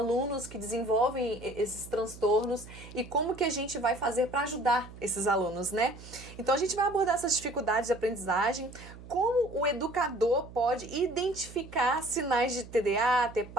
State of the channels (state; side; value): noise; right; hum, 16 dB below the sound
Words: que desenvolvem esses transtornos e como que a gente vai fazer para ajudar esses alunos, né? Então a gente vai abordar essas dificuldades de aprendizagem, como o educador pode identificar sinais de TDA,